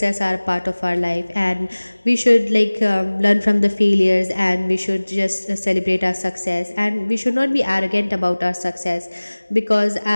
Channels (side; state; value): both; inverted; correlation -1.00